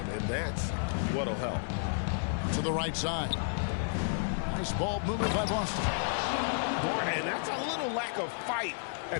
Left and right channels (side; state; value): right; silent; 57 dB below the other